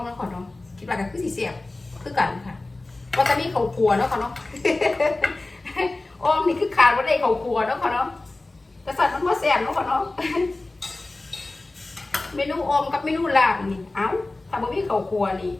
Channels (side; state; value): right; quieter; 3.0 dB